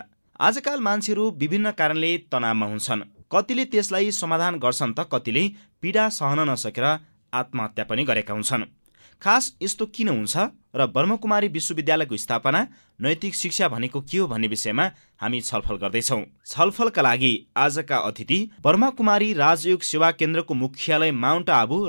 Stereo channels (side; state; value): both; inverted; correlation -1.00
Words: आजकाल मान्छेहरू विभिन्न कारणले तनावमा हुन्छन्। कतिले त्यसलाई समाधान गर्छन् त कतिले पीडा सहन नसकेर आत्महत्या पनि गरेका हुन्छन्। खास यस्तो किन हुन्छ र ब्रह्मकुमारी विश्वविद्यालयको स्थापना, नैतिक शिक्षा भनेको के हो भन्ने विषयमा हामी छलफल गर्दैछौँ। छलफलका लागि आजका अतिथि ब्रह्मकुमारी राजयोग सेवा केन्द्रको मुख्यालय माउन्ट आबु,